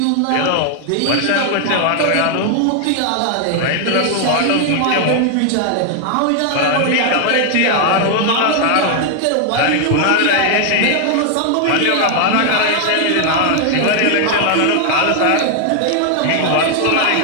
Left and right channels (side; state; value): both; different; correlation 0.00